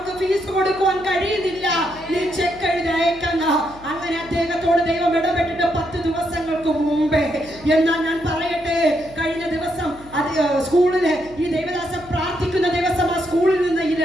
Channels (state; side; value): noise; left; hum, 21 dB below the sound